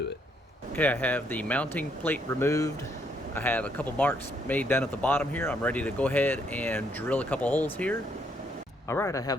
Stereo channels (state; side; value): normal; both; correlation 0.72